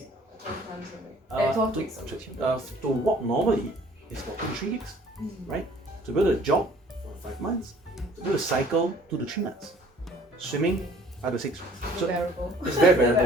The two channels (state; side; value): normal; both; correlation 0.54